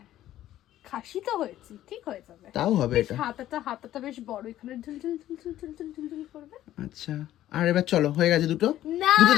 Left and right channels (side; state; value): right; quieter; 13.2 dB